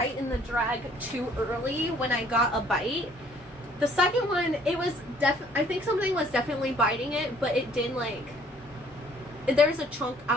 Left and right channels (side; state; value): both; normal; correlation 0.59